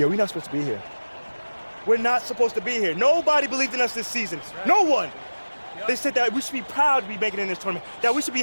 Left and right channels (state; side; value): inverted; both; correlation -1.00